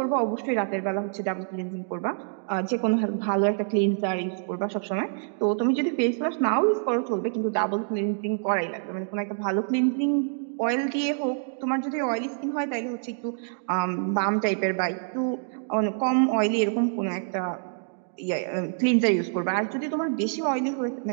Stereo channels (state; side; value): silent; left; digital silence